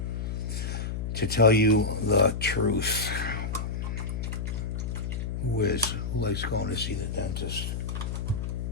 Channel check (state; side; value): noise; left; hum, 3 dB below the sound